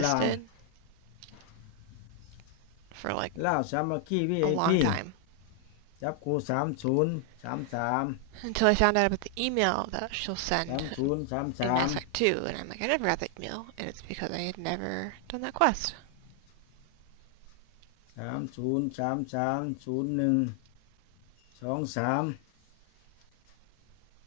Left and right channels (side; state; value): both; different; correlation 0.00